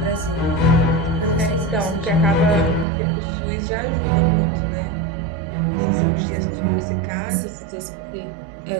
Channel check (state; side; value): drops out; left; at 2.9 s